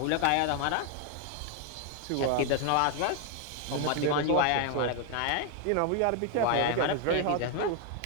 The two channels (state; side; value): different; both; correlation 0.01